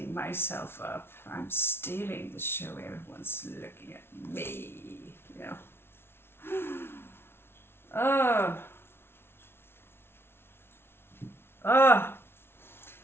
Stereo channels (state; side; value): late; right; 0.12 ms